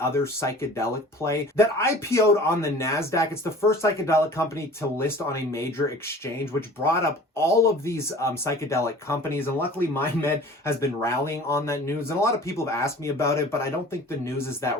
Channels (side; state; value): both; normal; correlation 0.44